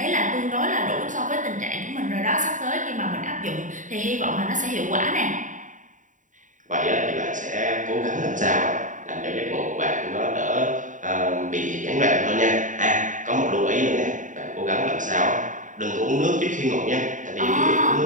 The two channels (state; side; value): late; left; 0.37 ms